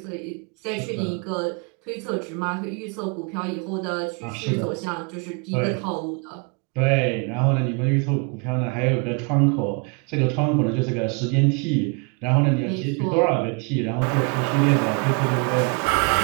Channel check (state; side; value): quieter; left; 33.1 dB